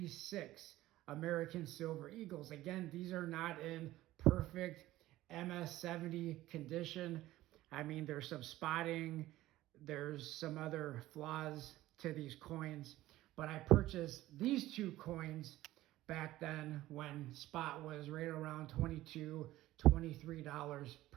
American Silver Eagles, again, these are not in perfect MS-70 condition. I mean, there's some spotting, there's some other flaws to these coins, but I purchased these two coins back then when spot was right around $22, $23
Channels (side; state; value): left; quieter; 15.9 dB